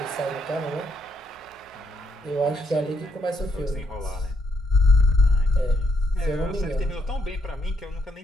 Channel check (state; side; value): normal; both; correlation 0.75